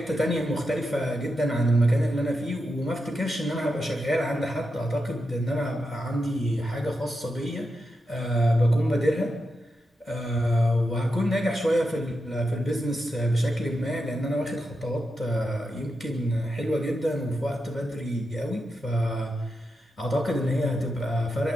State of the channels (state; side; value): normal; both; correlation 0.87